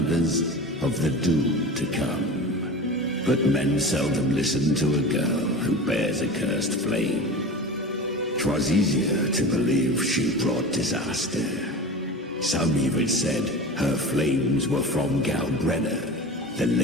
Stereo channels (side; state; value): both; normal; correlation 0.32